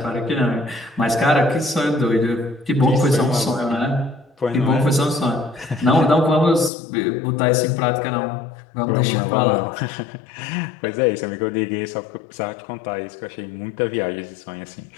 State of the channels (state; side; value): drops out; right; at 6.7 s